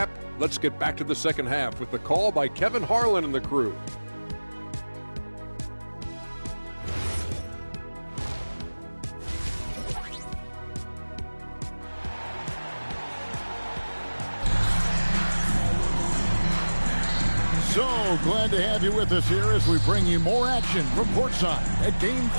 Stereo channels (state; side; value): inverted; both; correlation -1.00